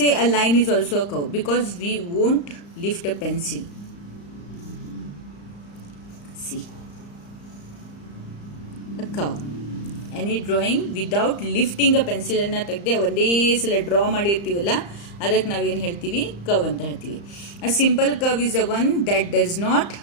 a line is also a curve because we won't lift a pencil. See, a curve. Any drawing without lifting a pencil ಅನ್ನ ತೆಗೆದೆ ಒಂದೇ ಸಲ ಡ್ರಾ ಮಾಡಿರ್ತೀವಲ್ಲ, ಅದಕ್ಕೆ ನಾವೇನು ಹೇಳ್ತೀವಿ? ಕರ್ವ್ ಅಂತ ಹೇಳ್ತೀವಿ. A simple curve is a one that does not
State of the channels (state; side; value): late; right; 35 ms